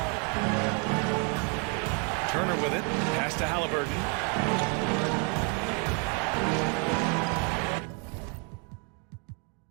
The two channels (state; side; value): quieter; left; 36.5 dB